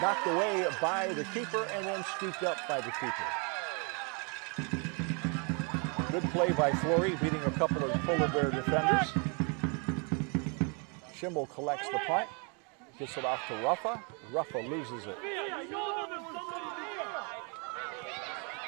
Knocked away by the keeper and then scooped up by the keeper. Good play by Flory, beating a couple of Polar Bear defenders. Schimmel collects the punt. Gets it off to Ruffa. Ruffa loses it.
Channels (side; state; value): left; quieter; 35.6 dB